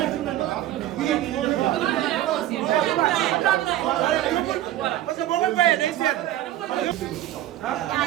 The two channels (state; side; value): quieter; left; 13.7 dB